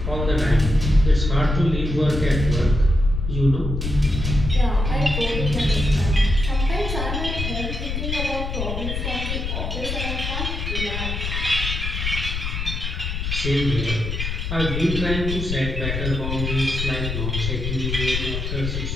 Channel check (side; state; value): left; noise; rumble, 3 dB below the sound